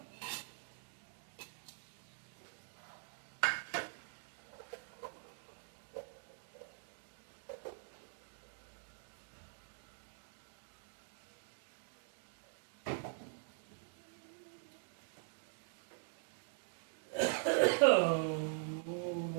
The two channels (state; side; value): silent; left; digital silence